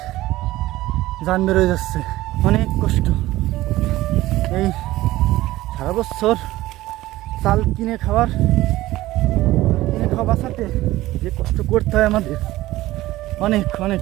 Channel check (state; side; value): quieter; left; 16.8 dB